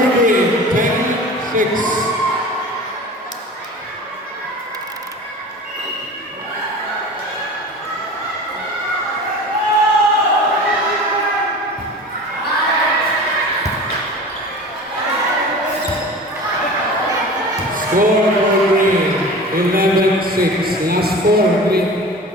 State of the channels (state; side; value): normal; both; correlation 0.37